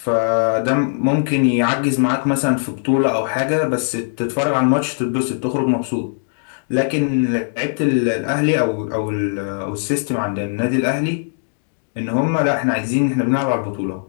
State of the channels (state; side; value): silent; right; digital silence